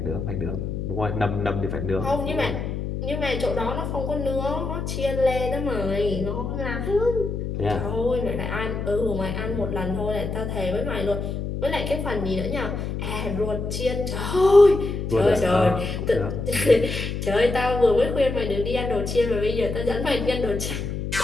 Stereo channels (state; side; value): noise; left; hum, 4 dB below the sound